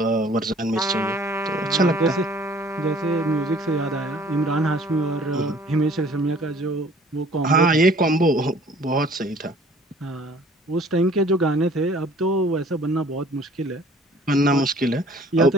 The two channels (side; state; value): both; normal; correlation 0.54